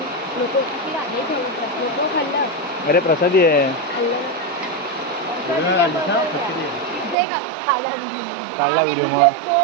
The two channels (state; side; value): drops out; left; at 7.2 s